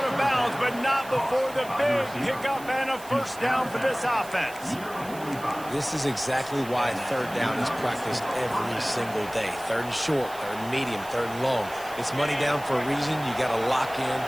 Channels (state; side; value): noise; right; hiss, 18 dB below the sound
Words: of bounds, but not before the big pickup and a first down for this offense. This is exactly why third down is practiced every single day. Third and short, third and medium, third and long. It's money down for a reason. You got to lock in.